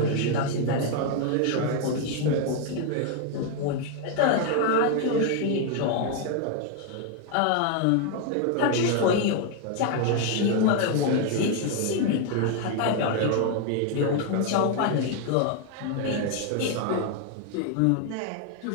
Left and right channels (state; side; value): different; both; correlation 0.01